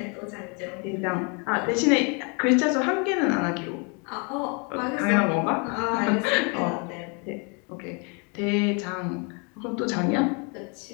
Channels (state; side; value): quieter; right; 33.9 dB